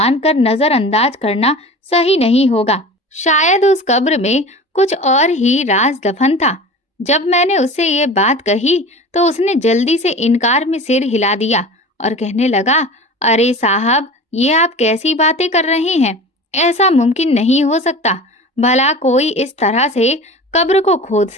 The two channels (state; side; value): normal; both; correlation 0.36